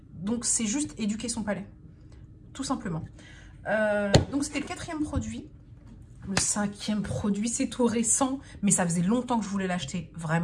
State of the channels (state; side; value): identical; both; correlation 1.00